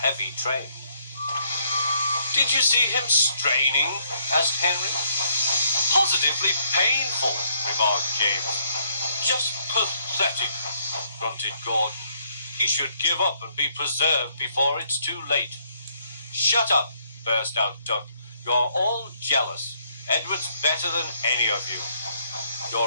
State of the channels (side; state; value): both; inverted; correlation -0.69